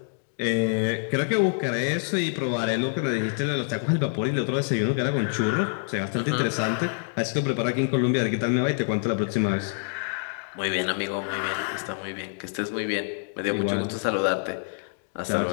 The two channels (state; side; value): silent; right; digital silence